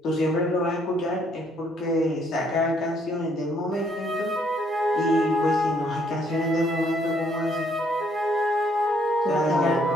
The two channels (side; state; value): both; normal; correlation 0.67